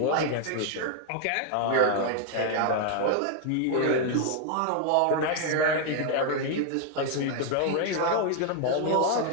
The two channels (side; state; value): both; different; correlation 0.00